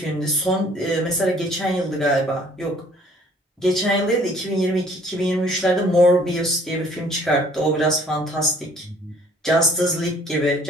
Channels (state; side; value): normal; both; correlation 0.57